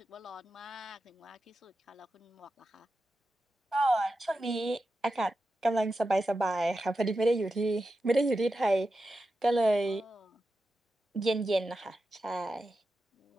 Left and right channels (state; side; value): normal; both; correlation 0.91